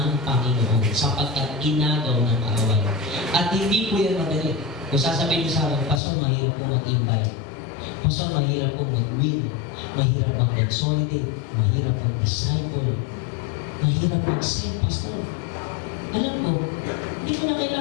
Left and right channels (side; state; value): right; drops out; at 6.0 s